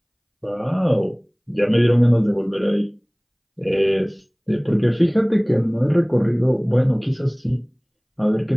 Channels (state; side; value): identical; both; correlation 1.00